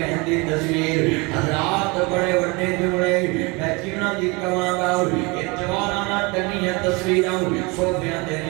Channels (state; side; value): quieter; left; 26.9 dB